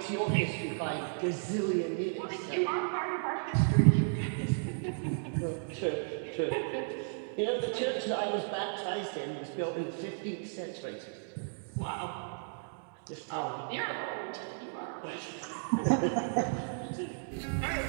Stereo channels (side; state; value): left; silent; digital silence